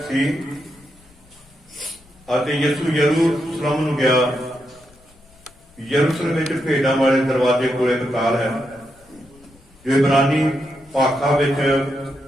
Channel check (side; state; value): left; noise; rumble, 28 dB below the sound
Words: सी अते यसू यरूशलेम नूं गया। यरूशलेम विच भेड़ां वाले दरवाजे कोल एक काल है जो इब्रानी भाखा विच